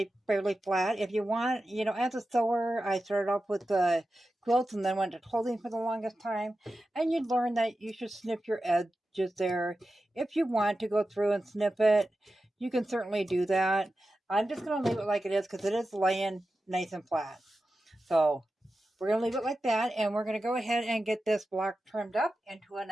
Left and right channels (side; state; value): both; normal; correlation 0.92